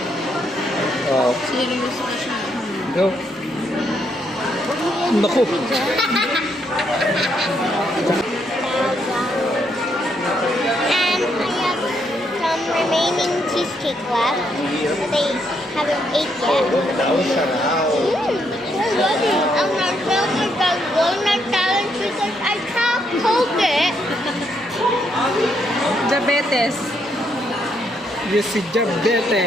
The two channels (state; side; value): normal; both; correlation 0.75